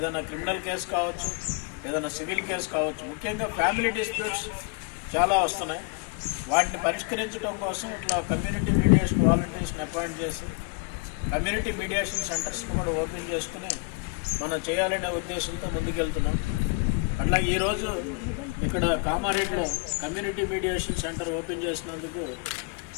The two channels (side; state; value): right; quieter; 29.6 dB